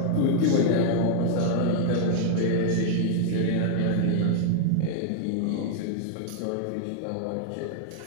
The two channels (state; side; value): different; both; correlation 0.00